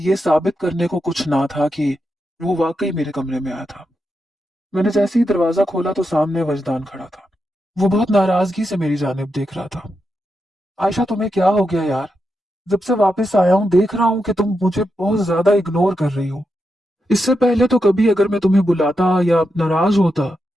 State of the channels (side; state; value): both; normal; correlation 0.86